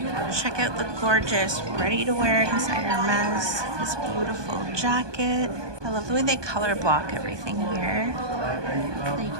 Check out the gorgeous ready-to-wear inside Hermes. This beautiful jacket. I love the way they color block everything here. So you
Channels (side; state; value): left; late; 1.2 ms